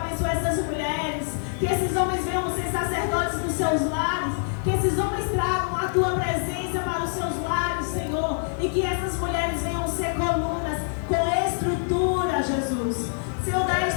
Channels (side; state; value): right; silent; 61 dB below the other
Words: essas mulheres. Que esses homens venham ser sacerdotes dos seus lares. Que esses homens tragam a tua presença para os seus lares, Senhor. E que essas mulheres venham ser colunas com estrutura, Jesus. Senhor, dá